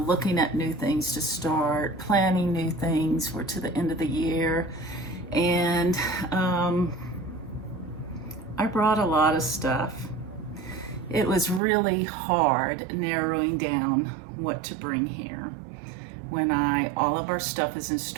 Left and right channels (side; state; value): left; drops out; at 11.6 s